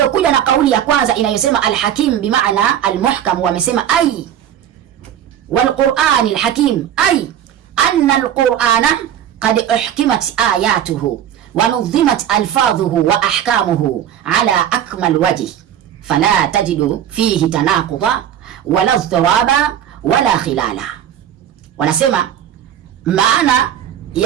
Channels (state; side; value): quieter; left; 10.2 dB